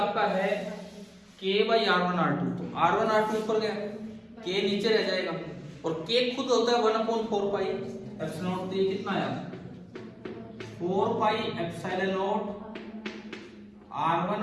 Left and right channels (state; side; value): identical; both; correlation 1.00